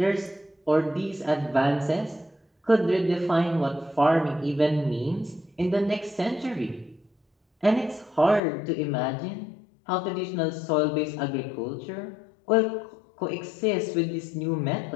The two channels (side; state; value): right; drops out; at 8.4 s